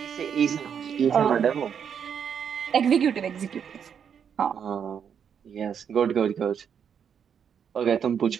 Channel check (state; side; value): quieter; left; 7.7 dB